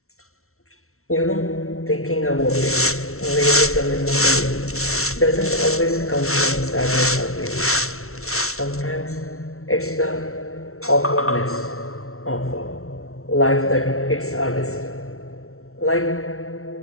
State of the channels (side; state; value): right; late; 0.63 ms